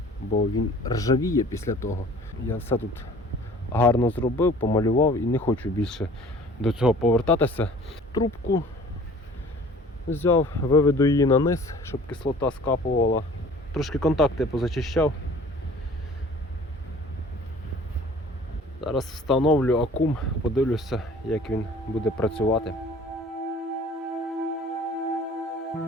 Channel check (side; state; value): both; normal; correlation 0.49